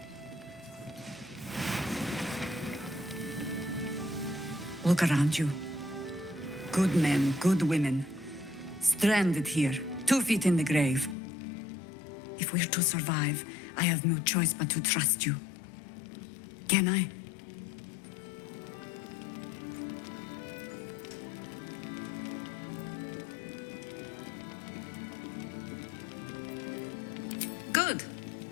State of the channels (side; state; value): right; drops out; at 11.2 s